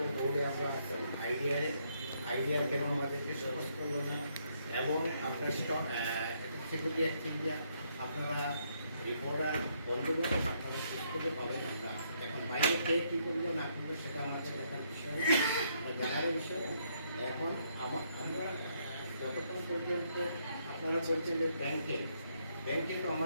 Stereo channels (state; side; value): inverted; both; correlation -0.73